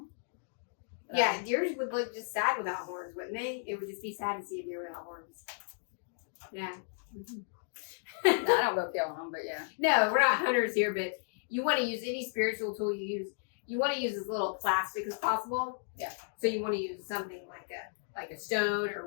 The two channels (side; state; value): right; silent; digital silence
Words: Yeah, deers would look just sad without horns, wouldn't they? It would just be sad to see a deer without horns. Yeah. Mm-hmm. I don't go killing them, but yeah. No, we're not hunters here, but you want to use any spiritual tool you use. You want to use as little plastic as possible. Yeah. So you want to use something like a stone